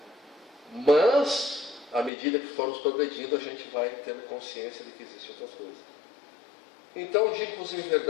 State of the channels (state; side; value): drops out; right; at 2.1 s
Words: Mas, à medida que formos progredindo, a gente vai tendo consciência de que existem outras coisas. Então, digo-vos em